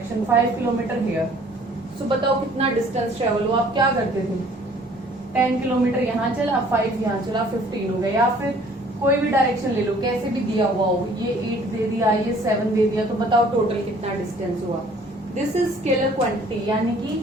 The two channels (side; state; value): both; normal; correlation 0.55